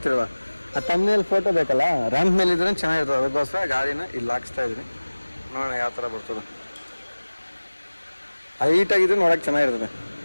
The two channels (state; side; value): inverted; both; correlation -1.00